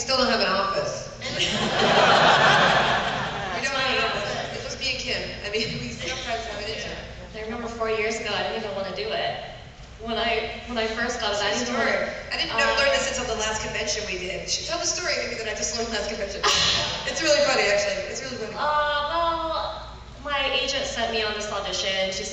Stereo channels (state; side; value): identical; both; correlation 1.00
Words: don't have an office. We don't have an office. It must be a Kim. I mean, we sometimes have an intern. I remember 4 years ago, I didn't even want to do it. When I first got it, I didn't I didn't learn this until the last convention we did. She told the story maybe that I just learned last convention. It's really funny, actually. It's really funny. Well, my agent sent me on this audition. She